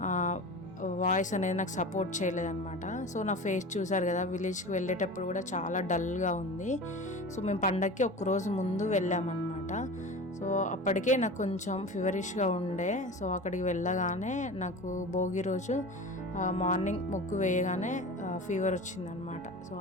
వాయిస్ అనేది నాకు సపోర్ట్ చేయలేదన్నమాట. సో నా ఫేస్ చూసారు కదా, విలేజ్కి వెళ్ళేటప్పుడు కూడా చాలా డల్గా ఉంది. సో మేము పండగకి ఒక్కరోజు ముందు వెళ్ళామన్నమాట. సో అప్పటికే నాకు కొంచెం ఫీవరిష్గా ఉండే. సో అక్కడికి వెళ్ళగానే నాకు భోగి రోజు మార్నింగ్ ముగ్గు వేయగానే ఫీవర్ వచ్చిందనమాట. సో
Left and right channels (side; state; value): both; normal; correlation 0.33